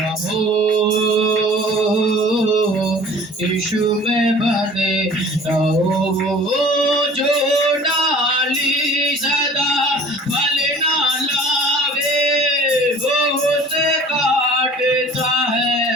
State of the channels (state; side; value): normal; both; correlation 0.46